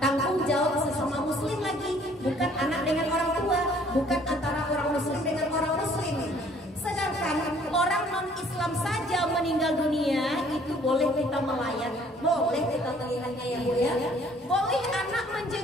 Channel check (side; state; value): both; normal; correlation 0.58